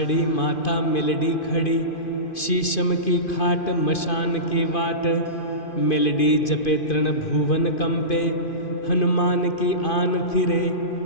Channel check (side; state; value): right; late; 2.5 ms